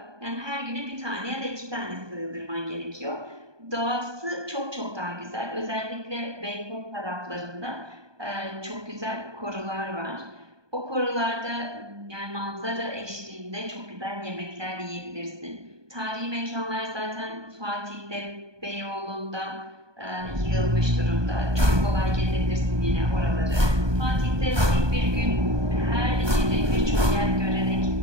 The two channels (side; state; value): left; late; 1.2 ms